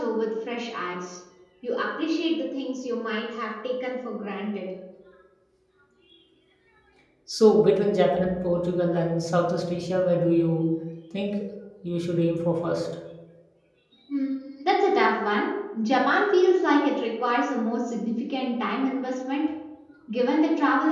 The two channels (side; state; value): both; identical; correlation 1.00